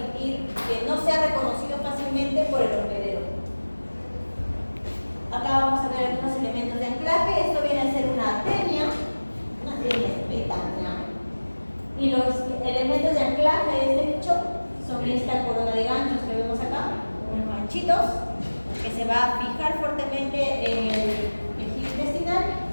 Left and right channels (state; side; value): inverted; both; correlation -1.00